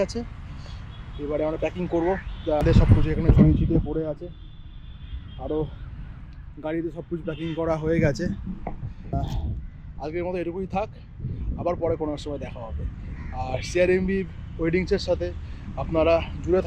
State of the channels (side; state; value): both; identical; correlation 1.00